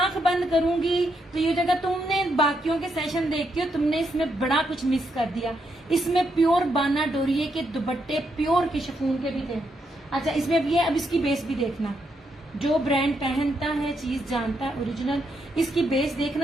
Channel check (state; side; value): normal; both; correlation 0.79